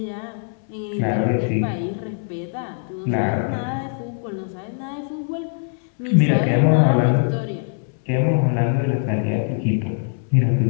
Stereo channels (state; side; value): silent; right; 64 dB below the other